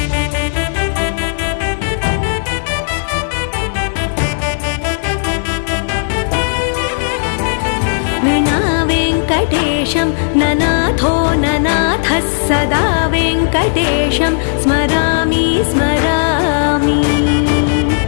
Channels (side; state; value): right; silent; digital silence